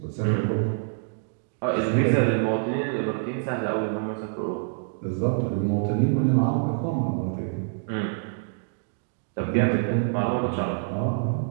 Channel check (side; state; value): left; silent; digital silence